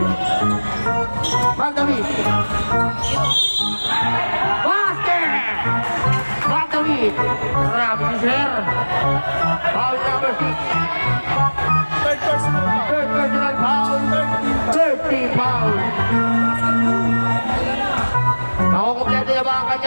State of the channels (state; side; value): inverted; both; correlation -1.00